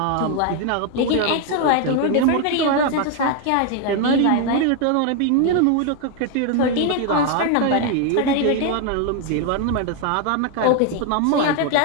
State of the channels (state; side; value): different; both; correlation 0.01